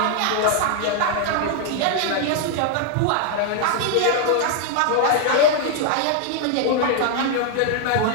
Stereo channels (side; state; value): both; different; correlation 0.00